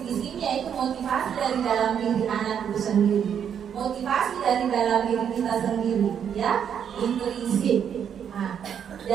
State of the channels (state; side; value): quieter; left; 8.3 dB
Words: di sini yaitu motivasi dari dalam diri anak itu sendiri, motivasi dari dalam diri kita sendiri, ya, intrinsik. Nah,